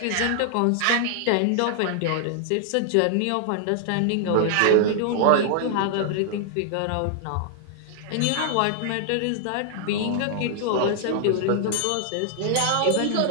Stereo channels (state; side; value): different; both; correlation 0.00